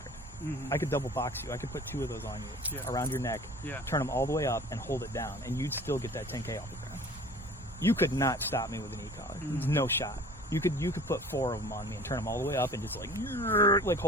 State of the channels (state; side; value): normal; both; correlation 0.45